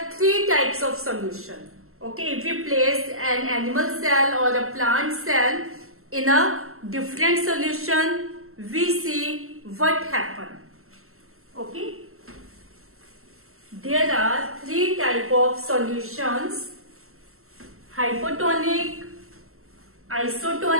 three types of solution. Okay, if we place an animal cell or a plant cell in a different solution, we see what happens. Okay. There are three types of solutions: hypotonic,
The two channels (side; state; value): left; late; 0.62 ms